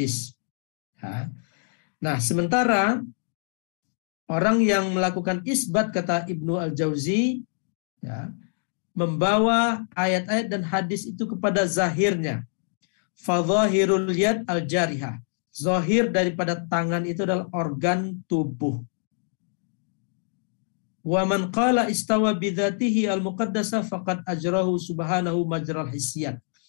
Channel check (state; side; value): silent; right; digital silence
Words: Ya. Nah, sementara orang yang melakukan isbat, kata Ibnu Al-Jauzi, ya, membawa ayat-ayat dan hadis itu kepada zahirnya. Fadhahirul yad al-jarihah. Zahir daripada tangan itu adalah organ tubuh. Wa man qala istawa bidzatihi al-muqaddasah faqad ajrahu subhanahu majral hisyat.